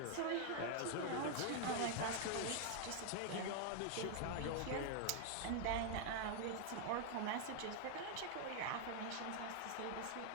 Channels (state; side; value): different; both; correlation 0.00